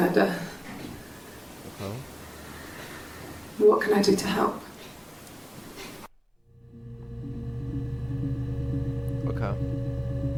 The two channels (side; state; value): both; identical; correlation 1.00